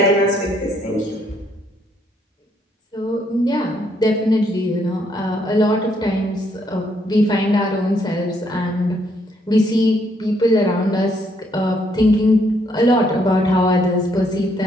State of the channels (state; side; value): normal; both; correlation 0.71